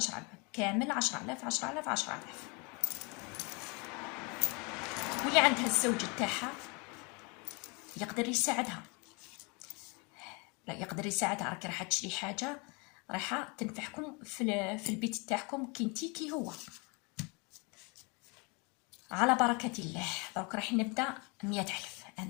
كامل 10,000 10,000 10,000. واللي عندها الزوج تاعها يقدر يساعدها، لا يقدر يساعدها. راكي راح تشري حاجه رايحه تنفعكم في البيت تاعكم كنتي كي هو. على بركه الله. دروك راح نبدا 100,000.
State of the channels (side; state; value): right; quieter; 30.5 dB